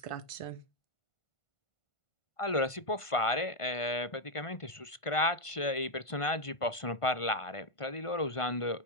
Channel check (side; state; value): right; late; 1.5 ms